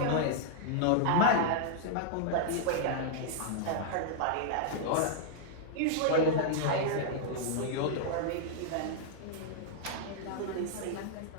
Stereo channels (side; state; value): both; different; correlation -0.01